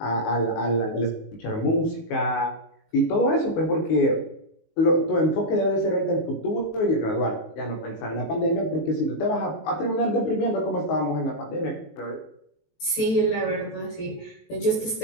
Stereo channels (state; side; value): late; right; 19 ms